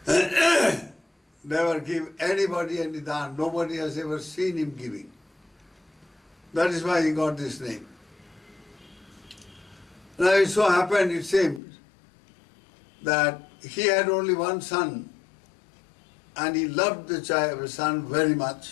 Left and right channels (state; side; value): drops out; right; at 11.6 s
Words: Never give anybody any dhan. Nobody has ever seen him giving. That is why he got this name. Now it so happened, it seems, that he had only one son, and he loved the son very